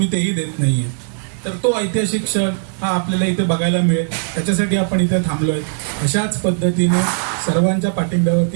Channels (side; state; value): left; silent; digital silence